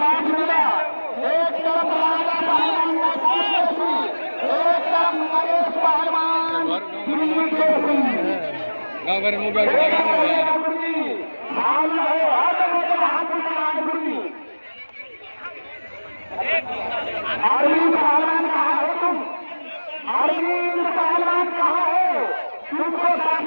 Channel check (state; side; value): inverted; both; correlation -1.00